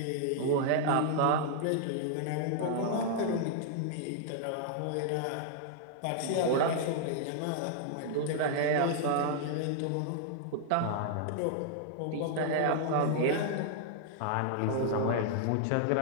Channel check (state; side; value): different; both; correlation -0.01